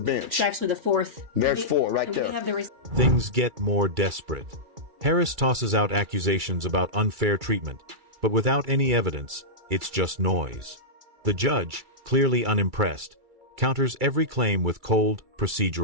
It's actually the 4th. There's 4 right there. We have the Things get more desperate. Harris tosses out accusations about unfair treatment, but without any evidence, it's just noise. The judge, clearly unimpressed, counters every claim with cold,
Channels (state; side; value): late; left; 2.3 ms